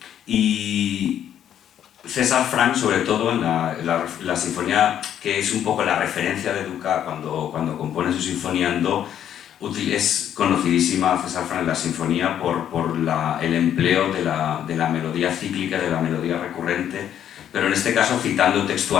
Y César Franck, sobre todo en la sinfonía, que es un poco la referencia de Dukas cuando compone su sinfonía en do, es conocidísima César Franck en la sinfonía por el empleo de la melodía cíclica, de la melodía recurrente, pero en este caso citando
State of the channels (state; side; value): quieter; right; 10.1 dB